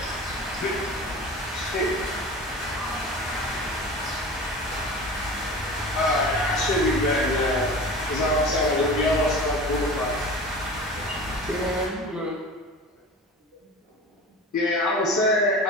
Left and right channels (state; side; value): normal; both; correlation 0.34